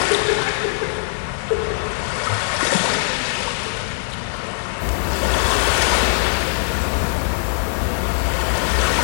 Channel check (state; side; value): silent; right; 65 dB below the other